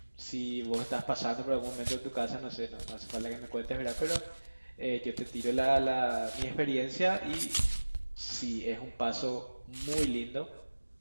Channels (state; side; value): inverted; both; correlation -1.00